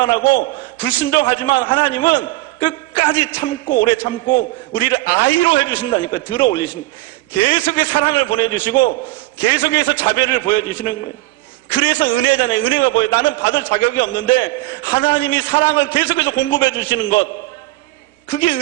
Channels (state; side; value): quieter; left; 19.2 dB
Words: 불순종하지만 하나님은 끝까지 참고 오래 참고 우리를 아이로 해주신다니까. 들어 올리시는 거예요. 계속해서 사랑을 보내주시고 계속해서 자비를 보여주시는 거예요. 그래서 은혜잖아요. 은혜가 뭐예요? 나는 받을 자격이 없는데 하나님이 사랑을 계속해서 공급해 주시는 것, 그게